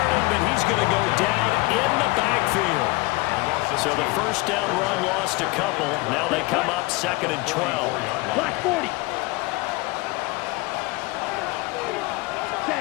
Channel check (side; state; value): right; quieter; 23.4 dB